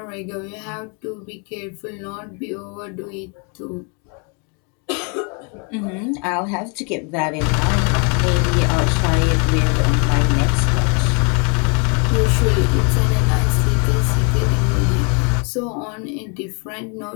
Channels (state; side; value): quieter; right; 36.3 dB